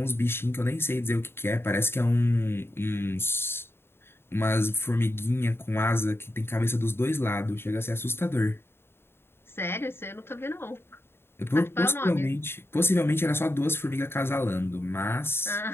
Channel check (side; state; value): right; late; 0.11 ms